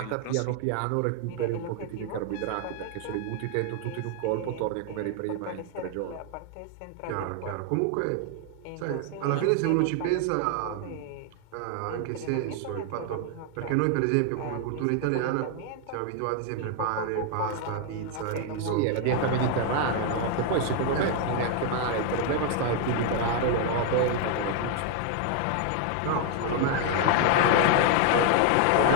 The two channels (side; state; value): both; different; correlation 0.00